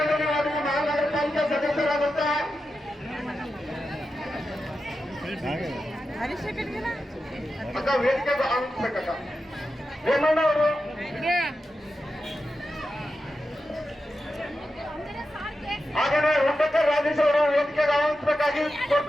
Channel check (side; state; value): both; normal; correlation 0.90